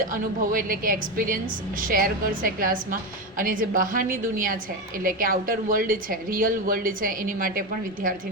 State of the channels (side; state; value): both; normal; correlation 0.15